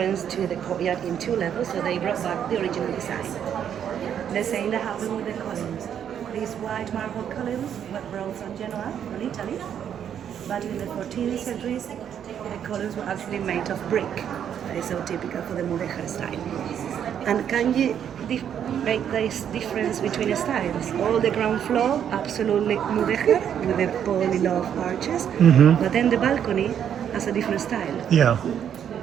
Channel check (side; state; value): left; quieter; 9.0 dB